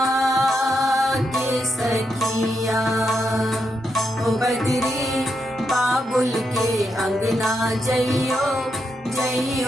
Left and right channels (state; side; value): normal; both; correlation 0.82